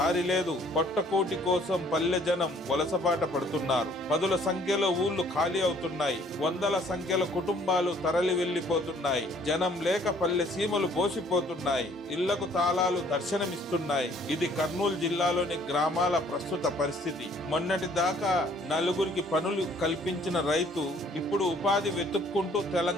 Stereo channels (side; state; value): both; normal; correlation 0.59